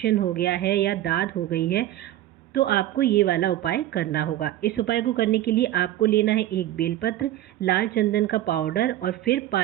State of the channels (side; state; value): left; quieter; 13.7 dB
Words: हो गया है या दाद हो गई है, तो आपको ये वाला उपाय करना होगा। इस उपाय को करने के लिए आपको लेना है एक बेलपत्र, लाल चंदन का पाउडर और फिर